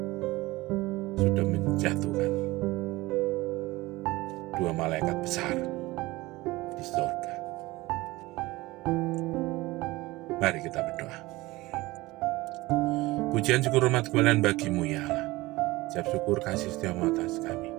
sudah menjatuhkan dua malaikat besar di surga. Mari kita berdoa. Pujian syukur hormat kemuliaan bagimu ya Allah. Ucap syukur kasih setiamu atas kami.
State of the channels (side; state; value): left; quieter; 20.2 dB